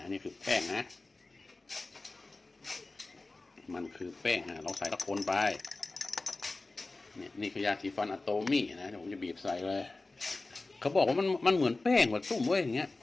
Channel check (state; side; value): quieter; right; 3.3 dB